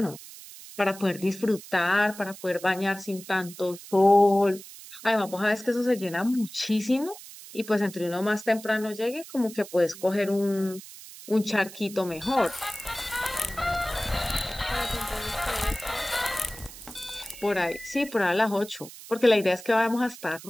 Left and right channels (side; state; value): right; noise; hiss, 16 dB below the sound